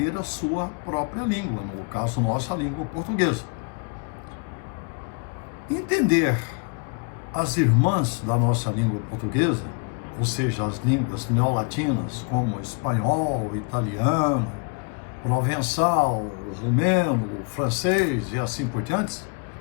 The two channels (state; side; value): quieter; right; 35.7 dB